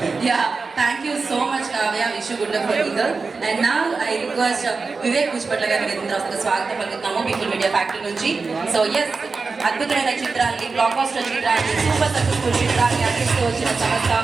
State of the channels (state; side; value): quieter; left; 4.3 dB